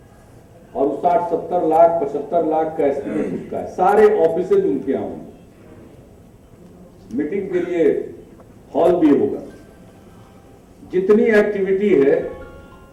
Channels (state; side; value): identical; both; correlation 1.00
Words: और 60-70 लाख 75 लाख का एस्टिमेट उसका है। सारे ऑफिसेज उनके यहाँ होंगे, मीटिंग के लिए हॉल भी होगा, जितनी एक्टिविटी है